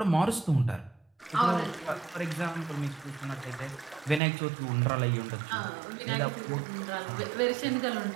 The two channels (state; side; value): drops out; left; at 4.2 s